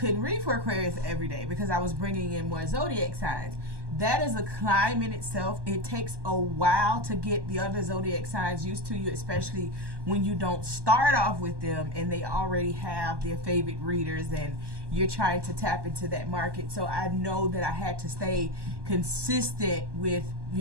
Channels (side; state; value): left; late; 1.2 ms